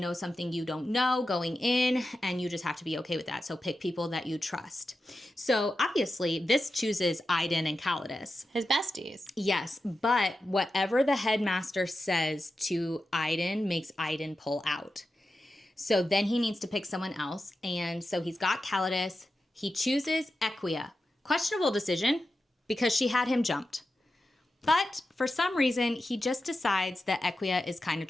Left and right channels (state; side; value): normal; both; correlation 0.91